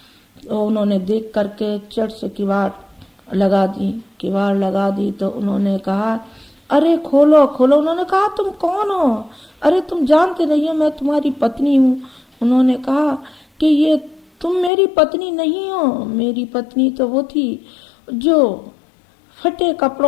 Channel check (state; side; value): drops out; right; at 14.7 s